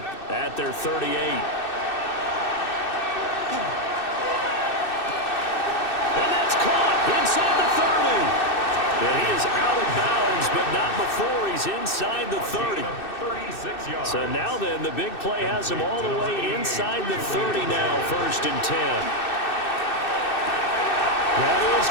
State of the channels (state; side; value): late; right; 2.6 ms